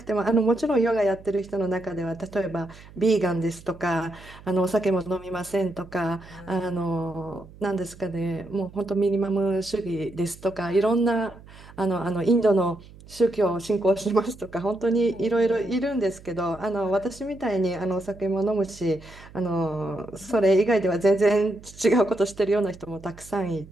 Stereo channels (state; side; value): noise; right; hum, 20 dB below the sound